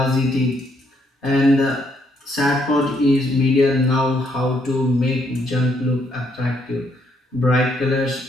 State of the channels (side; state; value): both; normal; correlation 0.72